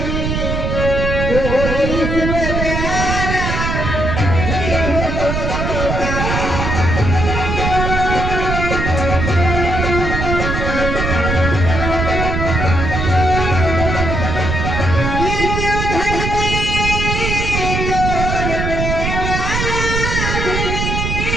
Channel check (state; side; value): noise; right; rumble, 1 dB below the sound